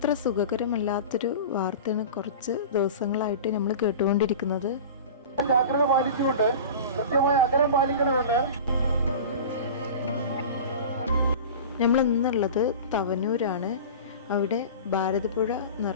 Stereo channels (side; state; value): both; inverted; correlation -0.34